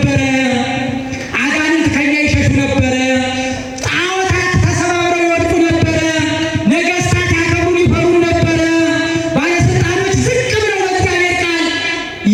አጋንንት ከኛ ይሸሹ ነበረ፣ ጣዖታት ተሰባብረው ይወድቁ ነበረ፣ ነገሥታት ያከብሩን ይፈሩን ነበረ፣ ባለስልጣኖች ዝቅ ብለው በእግዚአብሔር ቃል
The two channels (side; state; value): both; identical; correlation 1.00